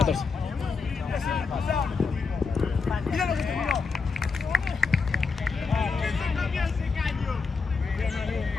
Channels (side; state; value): right; quieter; 4.7 dB